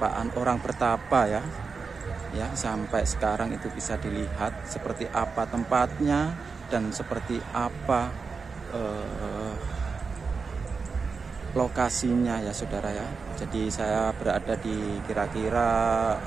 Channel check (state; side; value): quieter; left; 4.9 dB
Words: orang bertapa ya. Ya, sampai sekarang itu bisa dilihat seperti apa tempatnya dan seperti apa lokasinya ya saudara ya. Jadi saya berada di kira-kira